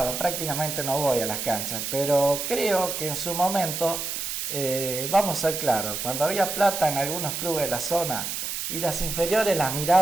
prácticamente no voy a las canchas, pero creo que en su momento, vamos a ser claros, cuando había plata en algunos clubes de la zona y las inferiores las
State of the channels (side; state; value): right; noise; hiss, 4 dB below the sound